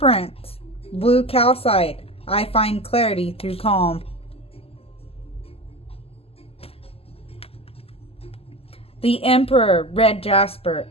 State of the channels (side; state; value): right; late; 0.29 ms